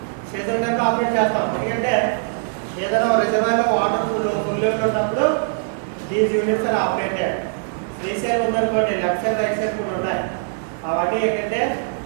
operate చేస్తాం. ఎందుకంటే ఏదైనా రిజర్వాయర్ వాటర్ ఫుల్ ఉన్నప్పుడు these units are operated. Three side ఉందనుకోండి, లెఫ్ట్ సైడ్ రైట్ సైడ్ కూడా ఉన్నాయి. అవన్నీ ఏంటంటే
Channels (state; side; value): silent; left; digital silence